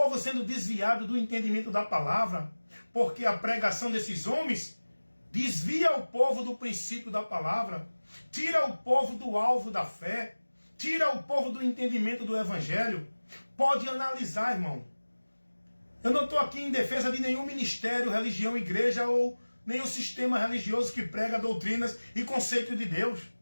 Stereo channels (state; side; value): inverted; both; correlation -1.00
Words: sendo desviado do entendimento da palavra, porque a pregação desses homens desvia o povo do princípio da palavra, tira o povo do alvo da fé, tira o povo do entendimento do evangelho. Pode analisar, irmão. Eu não estou aqui em defesa de nenhum ministério, religião, igreja ou nenhum sistema religioso que prega doutrinas e conceitos de Deus.